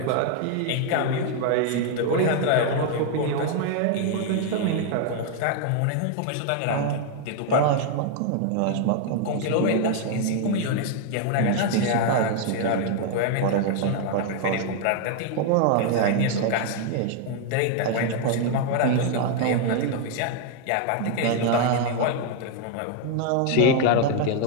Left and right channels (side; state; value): both; different; correlation 0.00